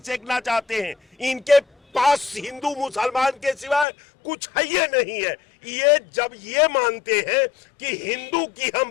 सेकना चाहते हैं। इनके पास हिंदू मुसलमान के सिवाय कुछ है ये नहीं है। ये जब ये मानते हैं कि हिंदू की हम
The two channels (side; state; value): right; drops out; at 3.9 s